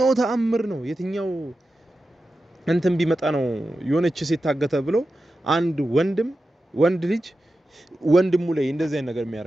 ተአምር ነው የትኛው እንትን ቢመጣ ነው የሆነች ሴት ታገተ ብሎ አንድ ወንድ ልጅ ወንድሙ ላይ እንደዚህ አይነት ነገር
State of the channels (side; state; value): both; normal; correlation 0.92